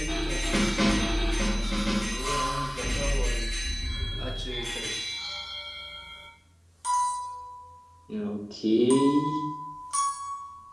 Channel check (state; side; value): identical; both; correlation 1.00